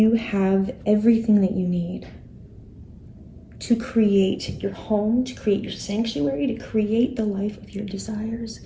have everything that you need to create your home, to create your sanctuary, to create the life of your desires.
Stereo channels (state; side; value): identical; both; correlation 1.00